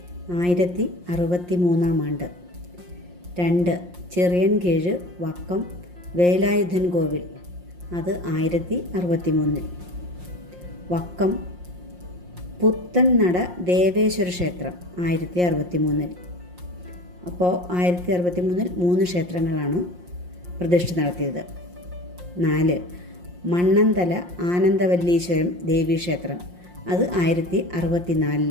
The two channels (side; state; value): left; late; 5.6 ms